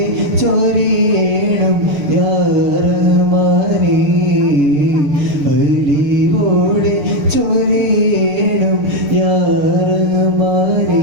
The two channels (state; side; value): late; left; 6.6 ms